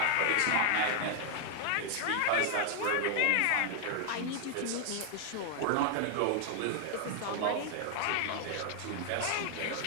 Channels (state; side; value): different; both; correlation 0.00